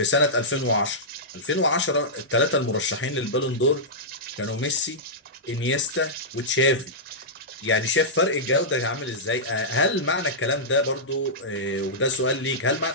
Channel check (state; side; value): normal; both; correlation -0.13